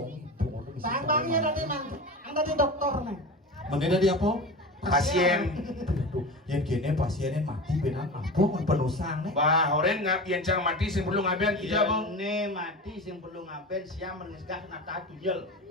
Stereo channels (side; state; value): both; normal; correlation 0.29